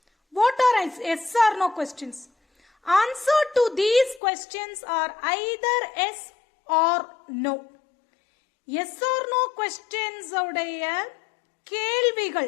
What are yes or no questions? Answer to these questions are either yes or no. Yes or no questions உடைய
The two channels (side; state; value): right; drops out; at 4.2 s